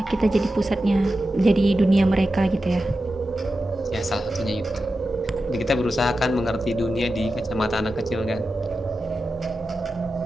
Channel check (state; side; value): normal; both; correlation 0.92